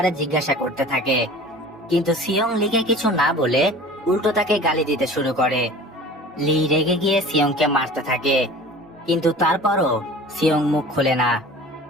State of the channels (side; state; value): both; normal; correlation 0.42